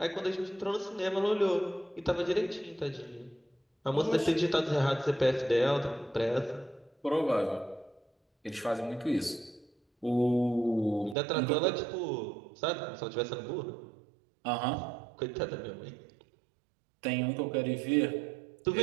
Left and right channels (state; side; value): drops out; left; at 11.2 s